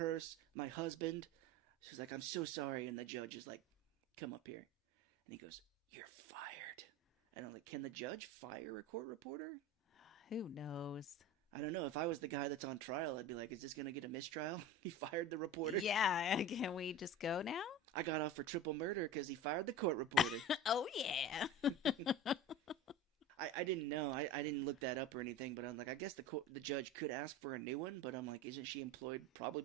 my husband. She's like, I'm so sorry. And the judge is like, come up here. And he goes, you're fired. And I'm like, can the judge fire a court reporter? Who knows? I don't know. If I was the guy that's on trial, I'd be like, is this going to get a mistrial? He fired the reporter. Yeah. Can we just go now? I got off for triple murder because he fired the court reporter. Oh, yeah. I didn't know. I didn't look that up or anything, but I'm like, I guess the judge could ask for a new one, but I'm like, isn't she employed probably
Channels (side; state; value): both; normal; correlation 0.31